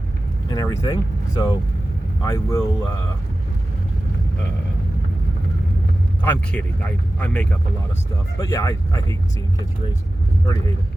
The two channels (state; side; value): normal; both; correlation 0.95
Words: everything. So I will. I'm kidding. I make up a lot of stuff. But yeah, I hate seeing kids race. I already hate it.